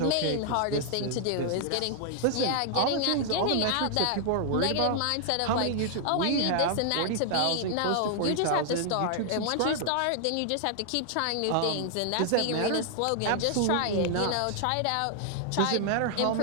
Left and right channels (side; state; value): both; different; correlation 0.00